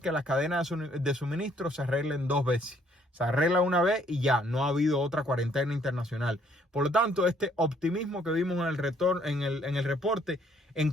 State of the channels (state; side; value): normal; both; correlation 0.65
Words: que las cadenas de suministro se arreglen 2 veces. Se arregla una vez y ya, no ha habido otra cuarentena internacional. Por lo tanto, este optimismo que vimos en el reporte en